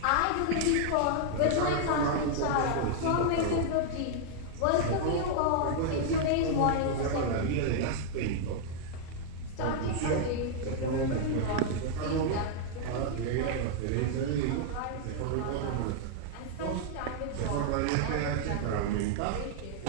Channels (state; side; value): different; both; correlation -0.01